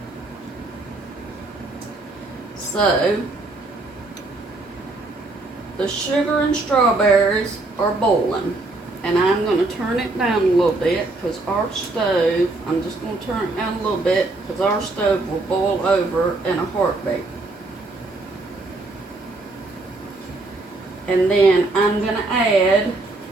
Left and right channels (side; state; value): left; quieter; 3.1 dB